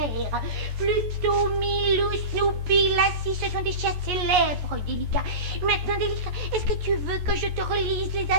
Pluto, Milou, Snoopy, Lassie, ce sont des chiens célèbres, délicat. Maintenant, délicat, est-ce que tu veux que je te relise les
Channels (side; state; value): left; late; 14 ms